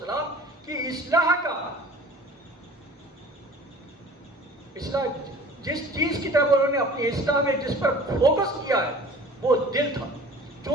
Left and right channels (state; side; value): normal; both; correlation 0.45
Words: کی اصلاح جس چیز کی طرف انہوں نے اپنی اصلاح میں جس پر فوکس کیا ہے وہ دل تھا،